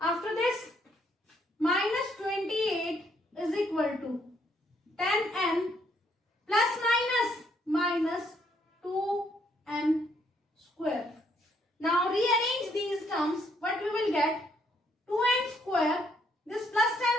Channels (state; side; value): normal; both; correlation 0.70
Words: this, minus 28 is equal to 10n plus minus 2n square. Now rearrange these terms. What we will get? 2n square. This plus 10